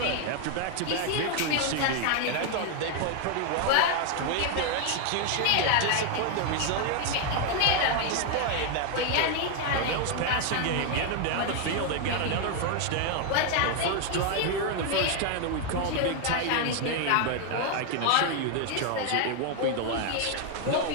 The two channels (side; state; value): both; different; correlation 0.00